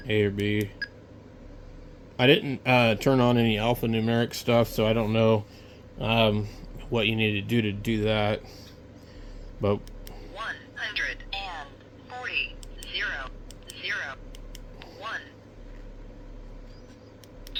A or B. I didn't turn on any alphanumeric stuff, so I don't know what you need to do that. But 140 0 0 1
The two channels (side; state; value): both; identical; correlation 1.00